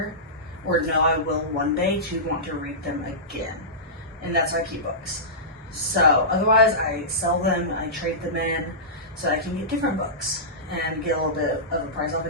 or know I will one day, to want to read them again. And that's why I keep books. So otherwise I sell them, I trade them in so I can get different books and get a little bit of a price off,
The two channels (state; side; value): normal; both; correlation -0.18